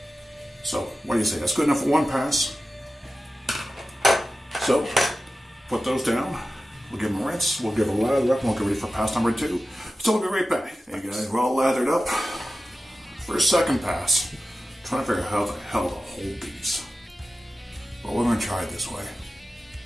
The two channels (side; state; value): both; normal; correlation 0.94